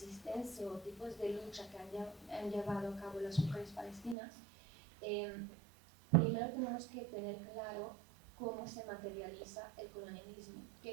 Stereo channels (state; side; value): drops out; left; at 4.2 s